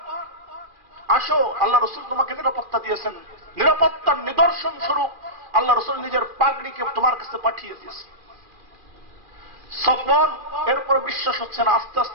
আসো, আল্লাহ রাসূল তোমাকে নিরাপত্তা দিয়েছেন, নিরাপত্তার নিদর্শন স্বরূপ আল্লাহ রাসূল নিজের পাগড়িকে তোমার কাছে পাঠিয়ে দিয়েছে। সফওয়ান এরপর বিশ্বাস হচ্ছে না, আস্তে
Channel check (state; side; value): late; left; 2.4 ms